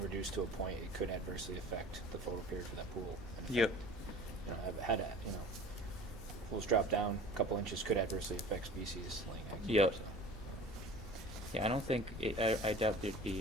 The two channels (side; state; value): both; normal; correlation 0.42